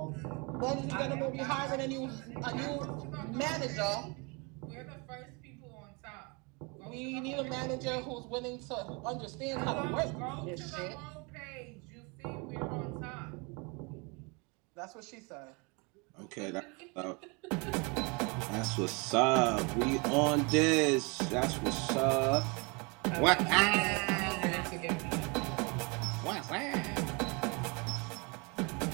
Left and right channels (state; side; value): quieter; left; 30.4 dB